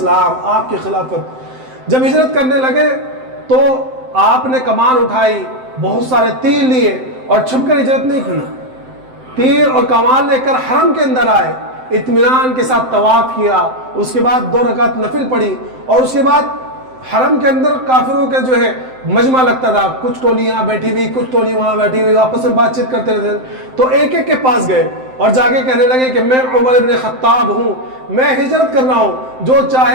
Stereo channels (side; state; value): left; late; 7.7 ms